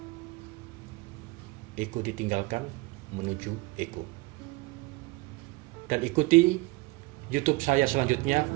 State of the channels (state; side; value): quieter; left; 23.4 dB